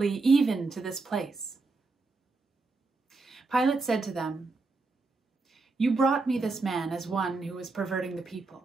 even to this place." Pilate said to them, "You brought me this man as one who was perverting the people.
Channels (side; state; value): left; quieter; 3.8 dB